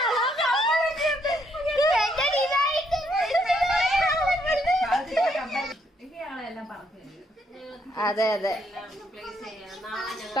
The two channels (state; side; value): normal; both; correlation 0.72